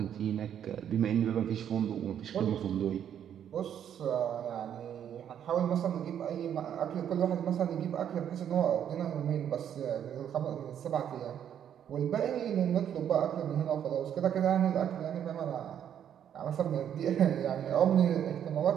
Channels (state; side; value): quieter; left; 9.4 dB